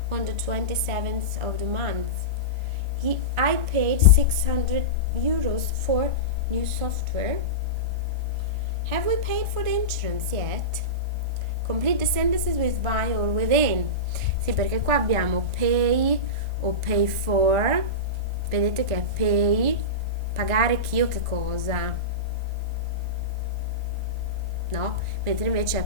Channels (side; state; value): left; late; 1.1 ms